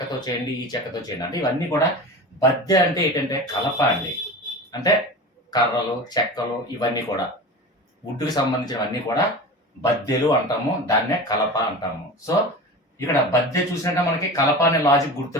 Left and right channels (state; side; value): normal; both; correlation 0.31